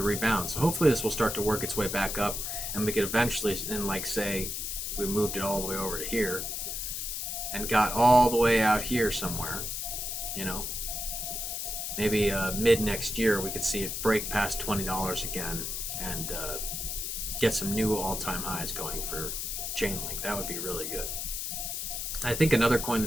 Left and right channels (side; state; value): left; noise; hiss, 3 dB below the sound